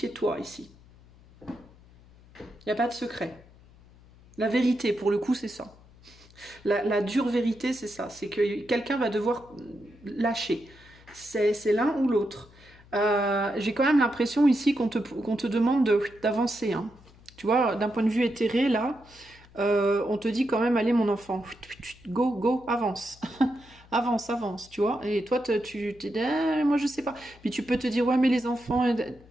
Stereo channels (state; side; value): noise; left; hum, 25 dB below the sound